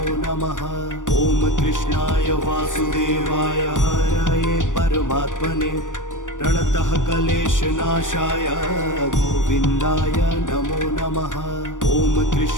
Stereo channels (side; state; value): right; late; 0.87 ms